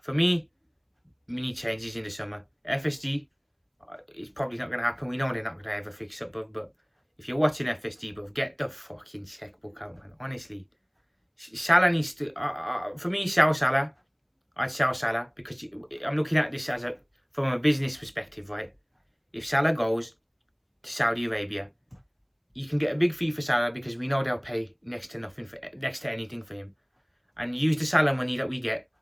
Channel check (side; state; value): both; identical; correlation 1.00